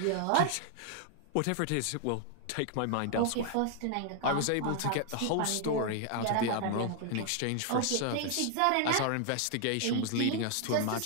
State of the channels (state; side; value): different; both; correlation 0.00